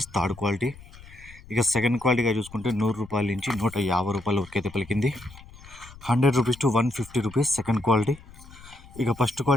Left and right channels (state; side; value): noise; left; rumble, 20 dB below the sound